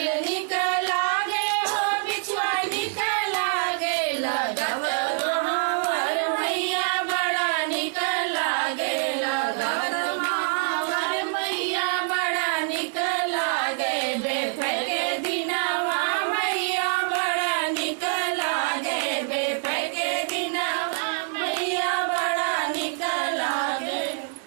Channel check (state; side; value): silent; left; digital silence